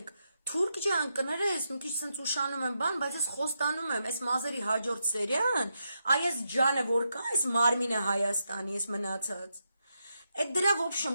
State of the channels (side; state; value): both; inverted; correlation -0.84